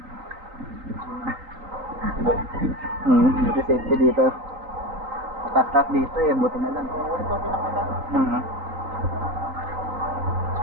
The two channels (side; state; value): left; late; 3.9 ms